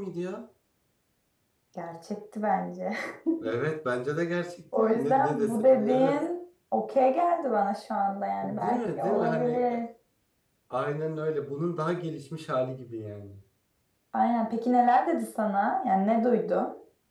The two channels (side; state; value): both; identical; correlation 1.00